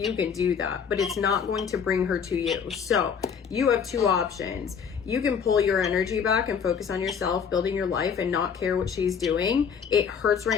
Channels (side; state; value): right; quieter; 6.8 dB